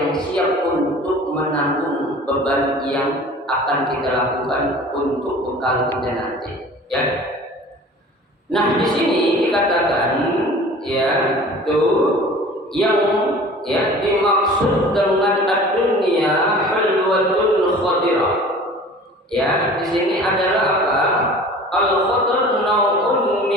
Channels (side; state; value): both; normal; correlation 0.44